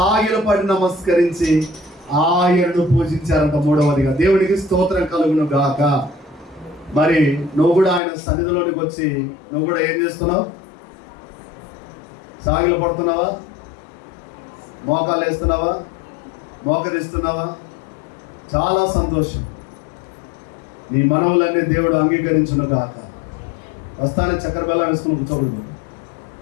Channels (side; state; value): right; drops out; at 8.0 s